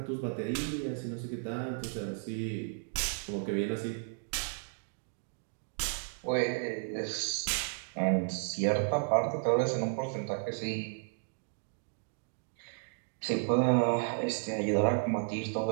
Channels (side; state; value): left; silent; digital silence